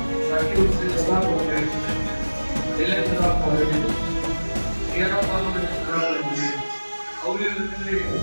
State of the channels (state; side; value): inverted; both; correlation -1.00